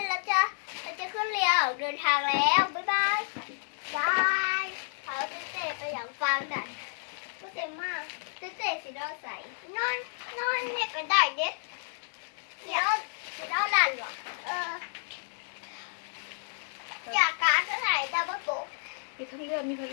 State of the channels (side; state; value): right; silent; digital silence